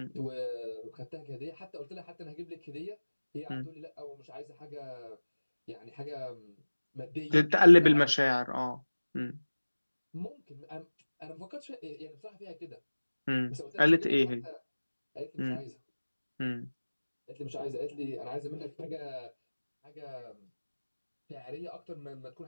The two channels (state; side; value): inverted; both; correlation -1.00